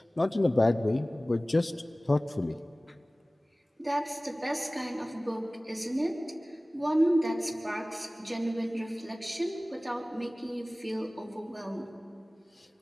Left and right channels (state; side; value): normal; both; correlation 0.98